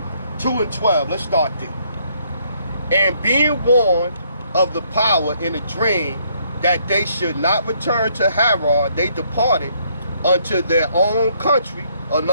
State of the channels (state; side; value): inverted; both; correlation -0.69